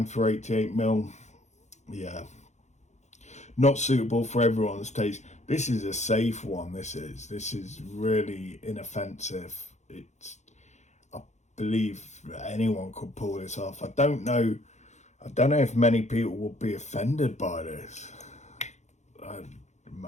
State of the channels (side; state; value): right; late; 0.33 ms